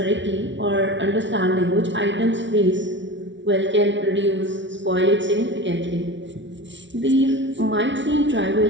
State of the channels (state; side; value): late; left; 0.54 ms